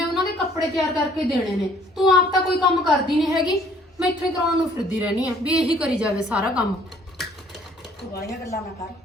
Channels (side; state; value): both; normal; correlation 0.59